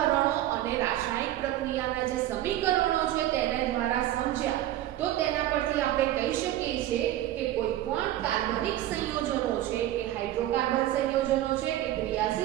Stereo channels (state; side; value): quieter; left; 13.7 dB